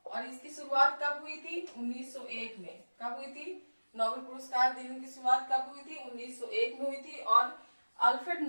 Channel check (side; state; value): both; inverted; correlation -1.00